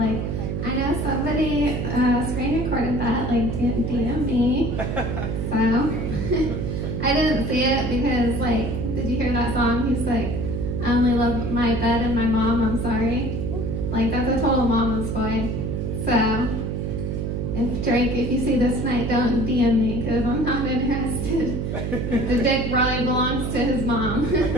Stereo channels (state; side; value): noise; right; hum, 2 dB below the sound